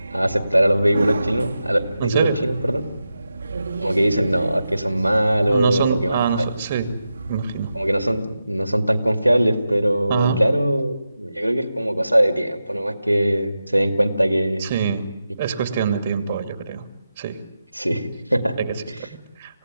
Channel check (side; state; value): both; inverted; correlation -0.89